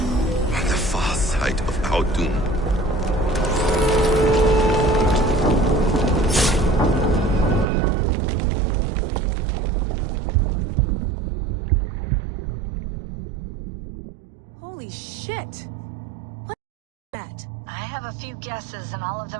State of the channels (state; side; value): drops out; left; at 7.7 s